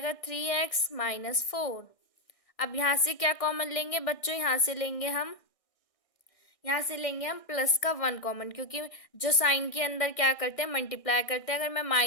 3x -4। अब यहाँ से क्या कॉमन लेंगे बच्चों? यहाँ से लेंगे हम प्लस का 1 कॉमन, क्योंकि जो साइन के अंदर क्या करते हैं? मल्टीप्लाई करते हैं। अगर मैं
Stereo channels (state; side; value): late; right; 1.6 ms